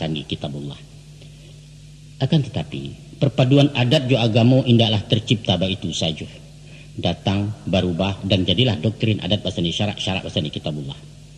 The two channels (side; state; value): both; identical; correlation 1.00